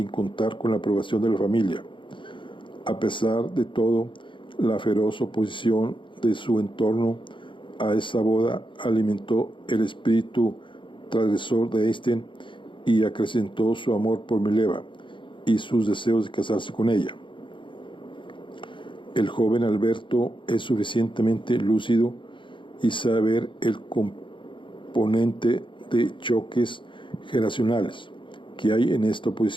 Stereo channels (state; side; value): late; right; 0.24 ms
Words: contar con la aprobación de la familia. A pesar de todo, la feroz oposición de su entorno a esa boda alimentó el espíritu transgresor de Eystein y acrecentó su amor por Mileva y sus deseos de casarse con ella. El joven Alberto es suficientemente lúcido y sabe ver el componente de choques generacionales que hay en esta